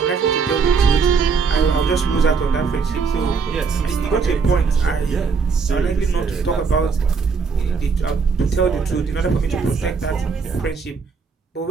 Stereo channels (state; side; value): quieter; left; 5.3 dB